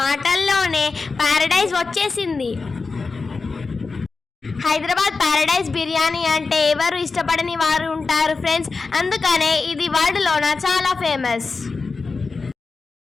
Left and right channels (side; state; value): right; quieter; 4.3 dB